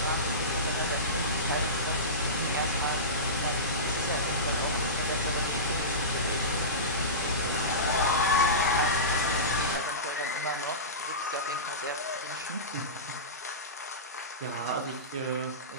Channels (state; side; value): normal; both; correlation -0.20